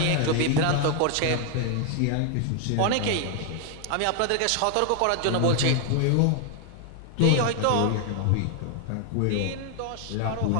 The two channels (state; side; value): different; both; correlation 0.00